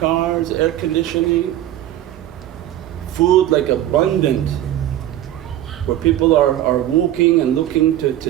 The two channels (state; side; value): quieter; left; 12.9 dB